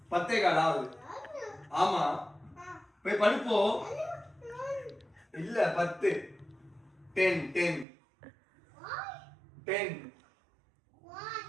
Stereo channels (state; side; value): drops out; left; at 7.9 s